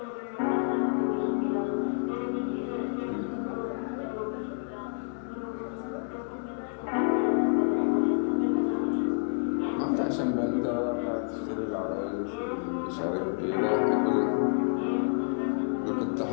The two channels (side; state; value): right; silent; 59 dB below the other